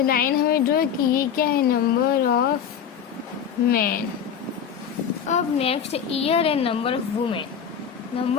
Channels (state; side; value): quieter; right; 8.0 dB